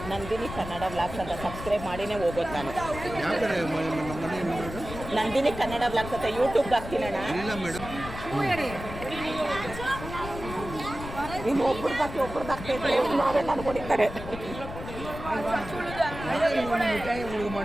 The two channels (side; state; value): left; noise; rumble, 10 dB below the sound